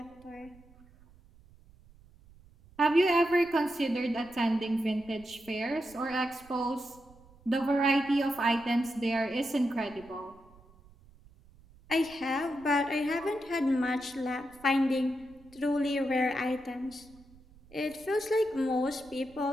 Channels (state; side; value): noise; right; rumble, 25 dB below the sound